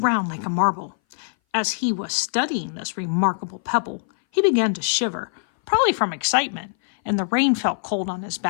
like a marble. As he was studying this remarkable pebble, he began to shiver, probably from excitement, and the rain felt cold on his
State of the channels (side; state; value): right; silent; 60 dB below the other